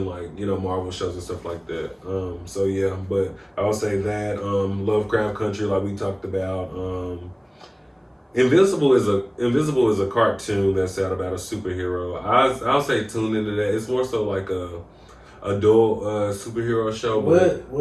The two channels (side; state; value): both; identical; correlation 1.00